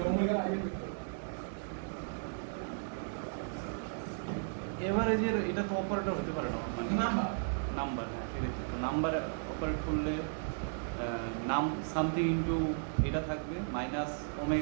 ওমেগা আইডেন্টি ভেক্টর এভারেজের এটা তো অপারেটর হতে পারে না মানে নাম্বার নাম্বার, হ্যাঁ সেটাই তো নাম্বার অপারেট করলে নাম সামথিং ইনটু এটা থাকবে মাইনাস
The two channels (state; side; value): silent; left; 54 dB below the other